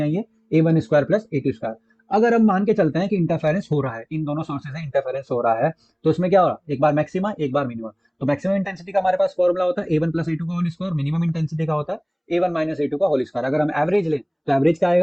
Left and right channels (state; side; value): identical; both; correlation 1.00